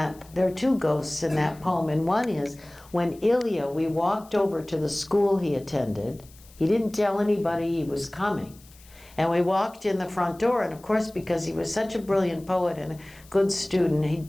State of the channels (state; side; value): noise; left; hiss, 25 dB below the sound